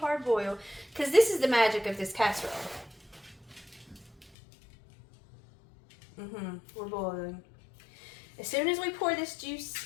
boil, because this is the magic of this casserole. We're boiling. As soon as we pour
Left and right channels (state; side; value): drops out; right; at 4.3 s